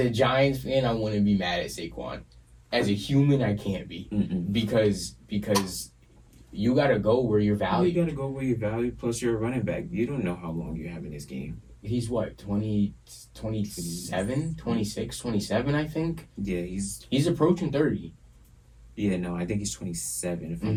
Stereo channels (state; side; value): identical; both; correlation 1.00